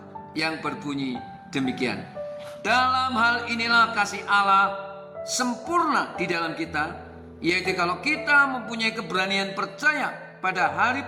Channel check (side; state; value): both; identical; correlation 1.00